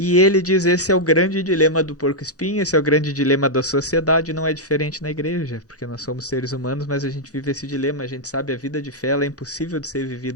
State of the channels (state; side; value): normal; both; correlation -0.04